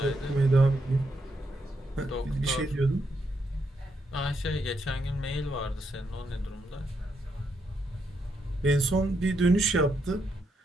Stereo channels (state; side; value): normal; both; correlation 0.79